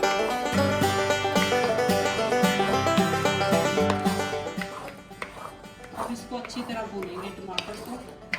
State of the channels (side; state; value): both; identical; correlation 1.00